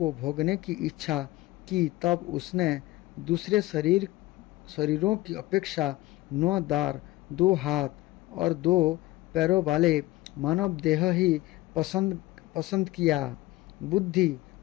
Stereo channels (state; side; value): quieter; right; 18.3 dB